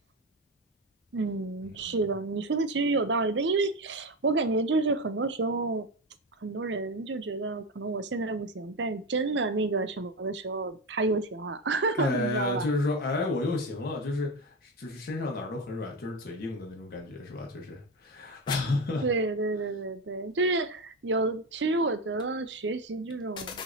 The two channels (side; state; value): both; normal; correlation 0.17